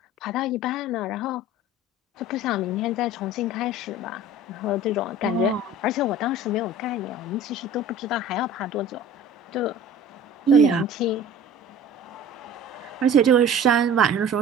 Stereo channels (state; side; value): normal; both; correlation 0.42